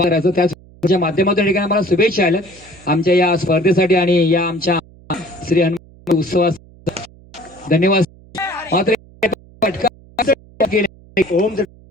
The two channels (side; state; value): right; noise; hum, 25 dB below the sound